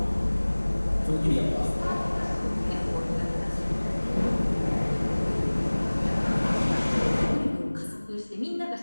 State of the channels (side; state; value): both; inverted; correlation -1.00